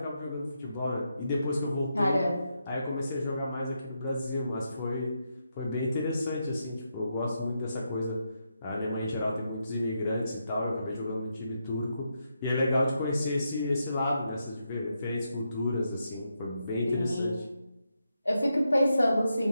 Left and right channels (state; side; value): inverted; both; correlation -0.83